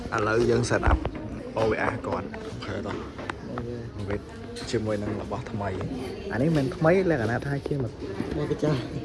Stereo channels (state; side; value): identical; both; correlation 1.00